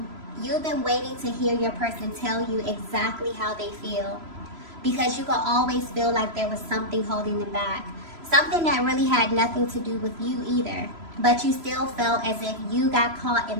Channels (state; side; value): late; left; 3.0 ms